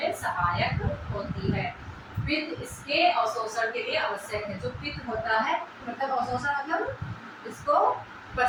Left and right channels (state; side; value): identical; both; correlation 1.00